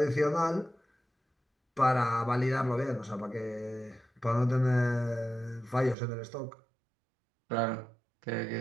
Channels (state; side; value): drops out; left; at 6.0 s